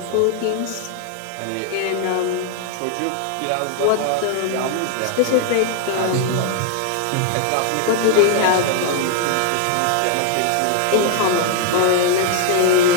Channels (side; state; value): both; different; correlation 0.00